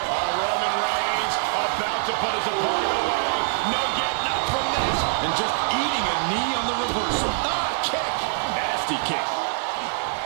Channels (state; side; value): silent; left; digital silence